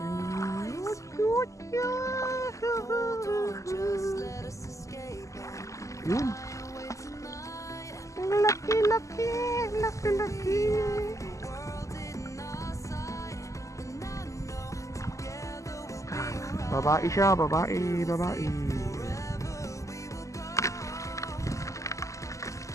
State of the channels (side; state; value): right; late; 0.16 ms